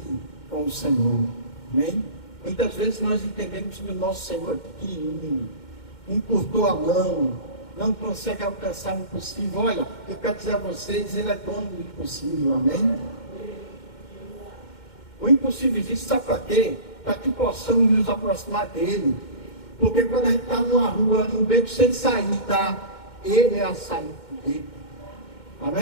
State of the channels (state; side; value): late; right; 2.1 ms